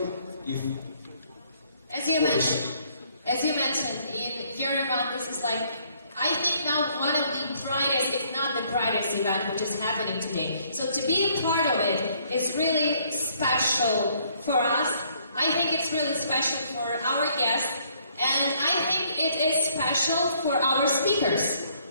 As you mentioned, in your event, this is like, I think now one of the brightest, if not the brightest event which is happening today. So to be a part of it is really special for us. I think it's really special for our guests, and I think it is special for our speakers.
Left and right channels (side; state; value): both; inverted; correlation -0.65